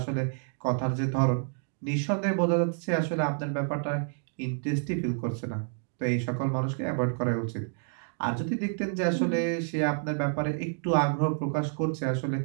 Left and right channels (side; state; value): left; silent; 59 dB below the other